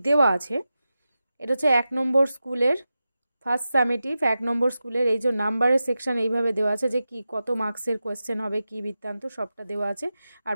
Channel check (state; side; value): inverted; both; correlation -0.92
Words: দেওয়া আছে। এটা হচ্ছে 1 নম্বর স্কুলের ফার্স্ট সামেটিভ, 1 নম্বর স্কুলের। এই যে নাম্বারের সেকশন এইভাবে দেওয়া আছে যে কি কত মার্কসের কোয়েশ্চেন হবে, কি বৃত্তান্ত, সবটা দেওয়া আছে। আর